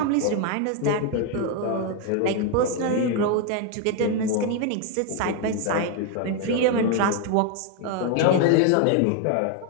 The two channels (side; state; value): both; different; correlation 0.01